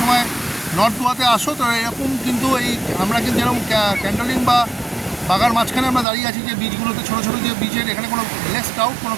সময় নর্থ গোয়াতে আসো, তো এরকম কিন্তু আমরা কিন্তু যেরকম ক্যান্ডলিং বা বাগার মাঝখানে আমরা দাঁড়িয়ে আছি, যে বিচগুলোতে ছোটো ছোটো যে বিচের, এখানে কোনো কোনো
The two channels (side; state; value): left; drops out; at 6.1 s